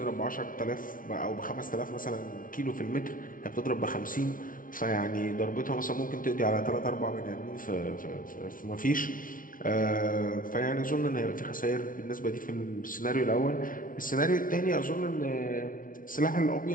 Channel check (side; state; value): right; late; 0.39 ms